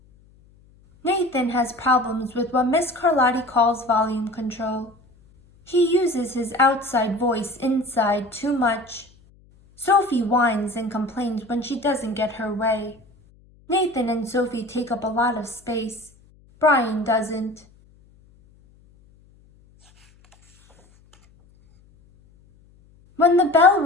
Nathan has problems with what Miss Carlotti calls volume control. He uses his outside voice inside too much. Sophie whines and complains when she doesn't get her way. Nathan and Sophie take up a lot of space. Brian doesn't. When the bell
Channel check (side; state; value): left; noise; hum, 29 dB below the sound